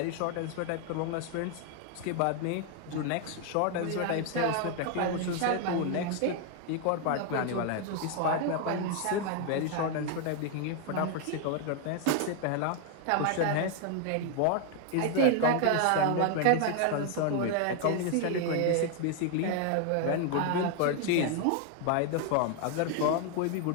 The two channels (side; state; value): both; different; correlation 0.00